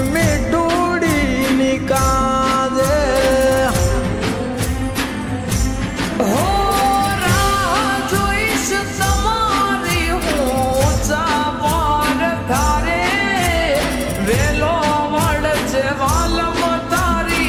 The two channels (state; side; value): identical; both; correlation 1.00